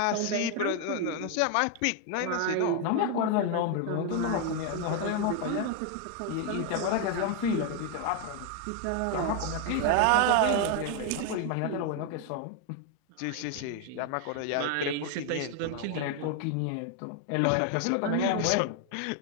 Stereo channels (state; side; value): different; both; correlation 0.01